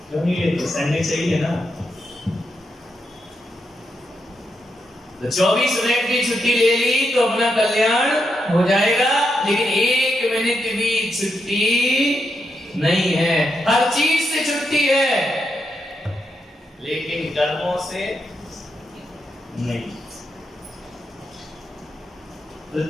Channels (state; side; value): normal; both; correlation 0.83